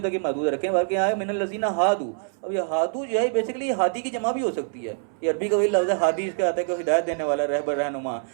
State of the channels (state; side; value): silent; left; 62 dB below the other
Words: तक ही महदूद रखें, बल्कि आया मिनल लज़ीना हादू। अब ये हादू जो है बेसिकली ये हादी की जमा भी हो सकती है, ये अरबी का वही लफ्ज़ है हादी, इसका आता है कि हिदायत देने वाला, रहबर, रहनुमा,